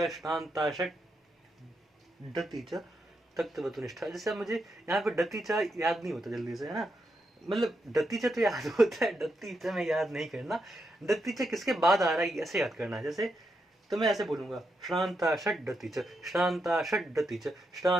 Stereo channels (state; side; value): normal; both; correlation 0.83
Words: श्रांता षट डति च तक्तवतु निष्ठा। जैसे अब मुझे यहाँ पे डति च याद नहीं होता जल्दी से, है ना? मतलब डति च तो याद होता है, डति च में याद नहीं करना। डति च किसके बाद आ रहा है ऐसे याद करना है। जैसे तो मैं ऐसे बोलूंगा, श्रांता षट डति च, श्रांता षट डति च,